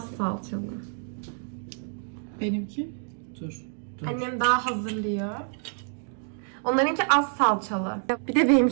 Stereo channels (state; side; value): silent; left; 56 dB below the other